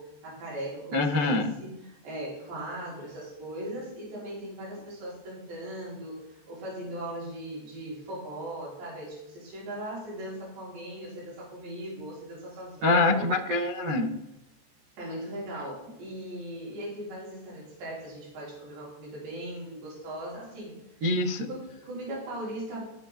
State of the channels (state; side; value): late; left; 14 ms